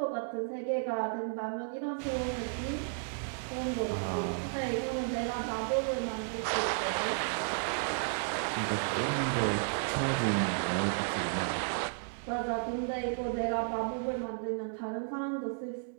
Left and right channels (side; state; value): left; silent; digital silence